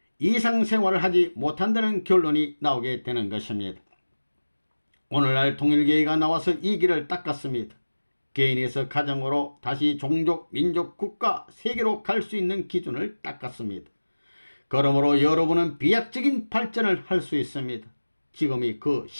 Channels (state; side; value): inverted; both; correlation -1.00